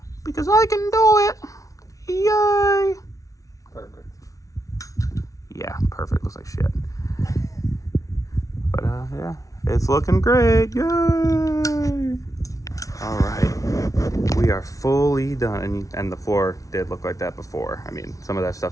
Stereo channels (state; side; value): late; right; 0.17 ms